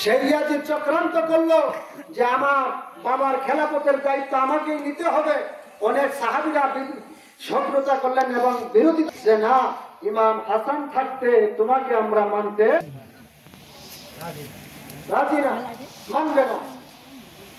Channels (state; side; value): identical; both; correlation 1.00